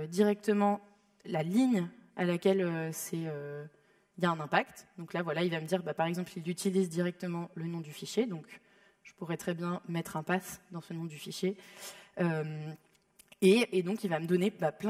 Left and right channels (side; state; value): both; identical; correlation 1.00